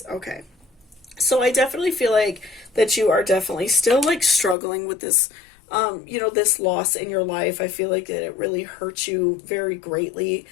Okay. So I definitely feel like that you are definitely still like struggling with this, this loss in your life. I feel like that it really hurts you very greatly,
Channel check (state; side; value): drops out; right; at 4.5 s